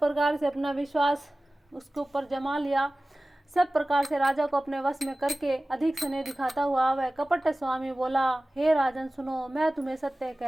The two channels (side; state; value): both; normal; correlation 0.97